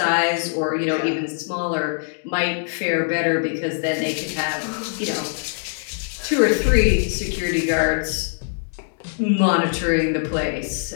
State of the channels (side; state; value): right; silent; digital silence